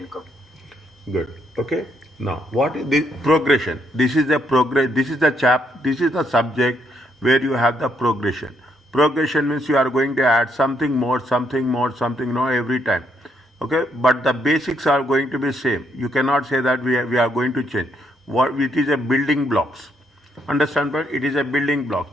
Good. Okay. Now, what is the progression? This is the progress. This is the This is the subject where you have the progression. Progression means you are going to add something more, something more, something more every time. Okay. But the basics are going to be same. You cannot say that we are going to change. What it is a building blocks. Understand? But it is a building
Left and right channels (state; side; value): normal; both; correlation 0.74